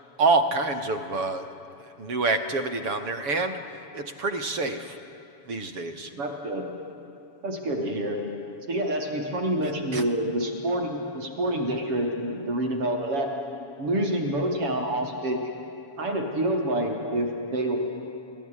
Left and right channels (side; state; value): left; late; 7.1 ms